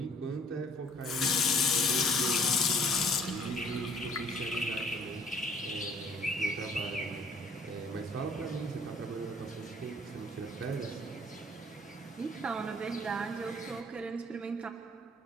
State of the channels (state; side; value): normal; both; correlation 0.56